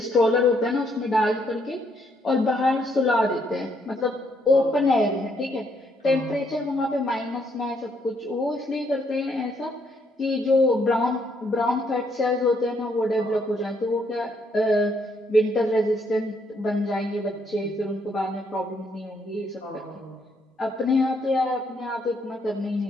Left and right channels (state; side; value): normal; both; correlation 0.72